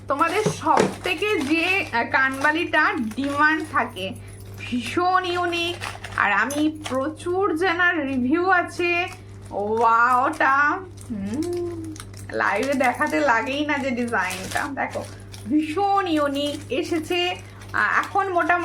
তোমাদের সব থেকে যে কানবালিটা ডিমান্ড থাকে, ভীষণ ইউনিক, আর আমি প্রচুর জানার রিভিউ আছে। ওয়াওটা লাইভে দেখাতে লাগেই না যে ডিজাইনটা দেখো, ভীষণ ইউনিক এসেছে। এখন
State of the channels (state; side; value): identical; both; correlation 1.00